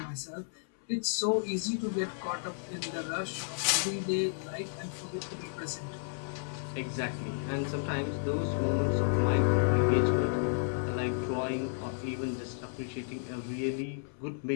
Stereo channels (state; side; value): silent; right; 56 dB below the other